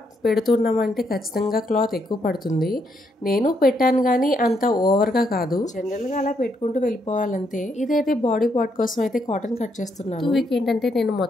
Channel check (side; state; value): both; normal; correlation 0.76